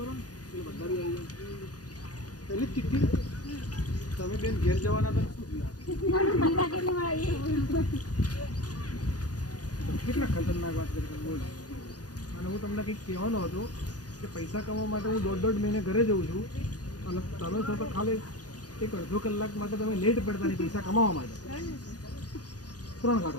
पहले तिथि તમે બેન ઘેર જવાના હતા કેટલા ખતરનાક વાત કરી બોલ. અને હું તમને કંઈક કહેવાનો હતો કે પૈસા કમાવા માટે હું દોઢ મહિને ઘરે જઉં છું અને તમે છો તો ખાલી એક અડધો કલાક માટે તમે લેટ પડતા નહીં પૈસા કમાવા માટે. 3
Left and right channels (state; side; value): late; right; 0.68 ms